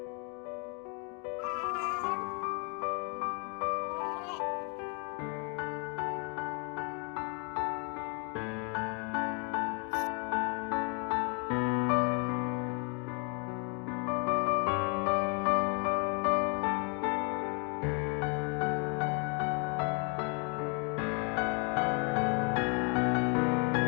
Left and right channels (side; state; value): right; quieter; 35.9 dB